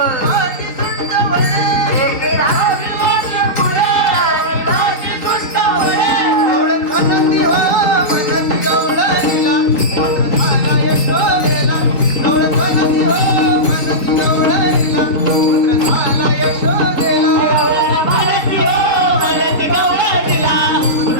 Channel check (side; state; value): right; late; 3.9 ms